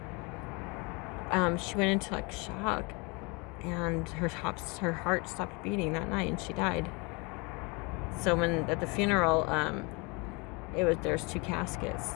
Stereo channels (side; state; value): right; quieter; 29.1 dB